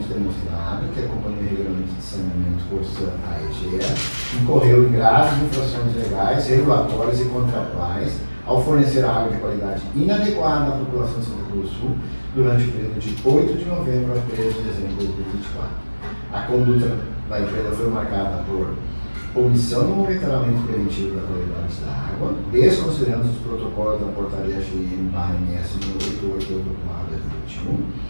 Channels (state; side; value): inverted; both; correlation -1.00